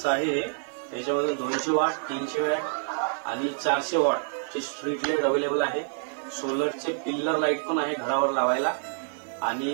आहे हे. याच्यामध्ये 200 वॉट, 300 वॅट आणि 400 वॉटचे स्ट्रीट लाईट अवेलेबल आहे. सोलरचे पिल्लर लाईट पण आहे घरावर लावायला.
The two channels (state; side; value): silent; left; 60 dB below the other